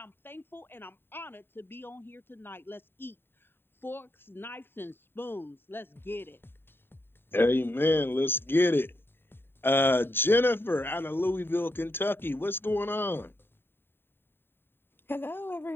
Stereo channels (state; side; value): late; right; 0.11 ms